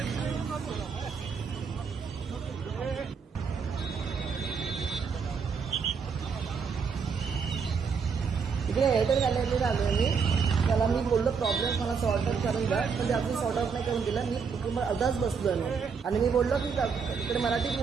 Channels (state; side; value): quieter; left; 5.8 dB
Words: इकडे एअरटेल गॅलरीला आलो मी. त्याला मी बोललो प्रॉब्लेम मला सॉर्ट आउट करून द्या, पण ते आपण सॉर्ट आउट नाही करून दिला. मी कुटुंब अर्धाच बसलो मी आणि मी बोललो की इकडे मराठीत